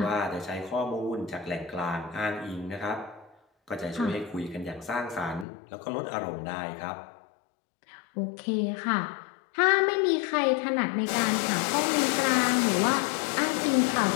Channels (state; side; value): drops out; right; at 5.5 s